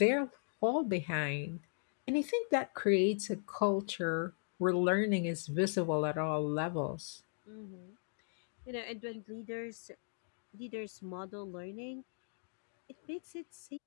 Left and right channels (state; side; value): silent; right; digital silence